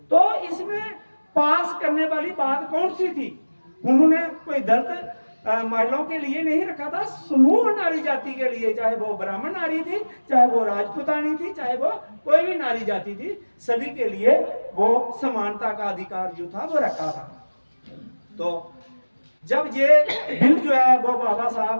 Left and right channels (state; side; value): inverted; both; correlation -1.00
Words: तो इसमें पास करने वाली बात कौन सी थी? उन्होंने कोई दलित महिलाओं के लिए नहीं रखा था, समूह नारी जाति के लिए, चाहे वो ब्राह्मण नारी थी, चाहे वो राजपूतानी थी, चाहे वो कोई भी नारी जाति थी, सभी के लिए वो समानता का अधिकार जो था वो रखा था। तो जब ये बिल जो है वो बाबा साहब